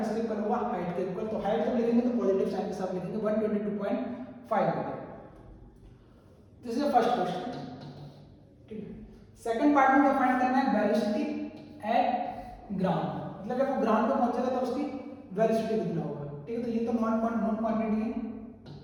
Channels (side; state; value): both; identical; correlation 1.00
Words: इक्वल होगा, हाइट के इक्वल। तो हाइट जब लिखेंगे तो पॉजिटिव साइन के साथ लिखेंगे 122.5 metre. This is the first question, ठीक है। सेकंड पार्ट में क्या फाइंड करना है, वेलोसिटी एट ग्राउंड, मतलब जब वो ग्राउंड पे पहुंचेगा तो उसकी वेलोसिटी कितना होगा, ठीक है। तो ये तो नॉन क्वांटिटी है।